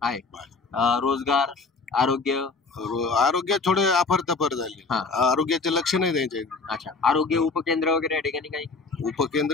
रोजगार, आरोग्य थोडे अफरतफर झाले. आरोग्याचे लक्ष नाही द्यायचे. अच्छा, आरोग्य उपकेंद्र वगैरे या ठिकाणी काही?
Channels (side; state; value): right; quieter; 4.2 dB